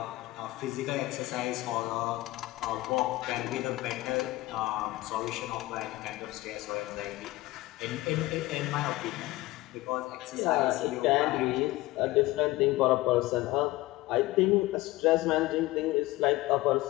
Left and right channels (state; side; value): quieter; right; 18.9 dB